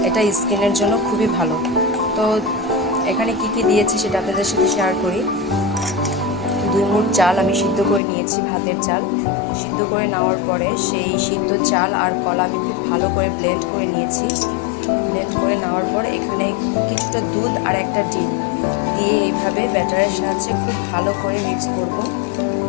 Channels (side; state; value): right; drops out; at 8.0 s